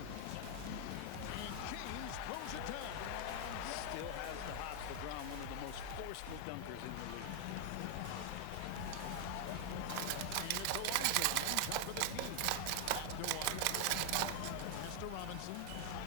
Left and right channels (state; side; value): different; both; correlation 0.00